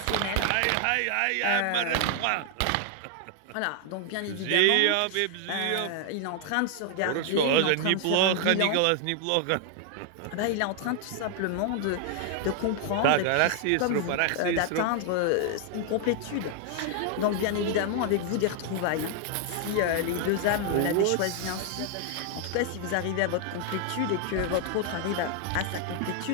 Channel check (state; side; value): different; both; correlation 0.00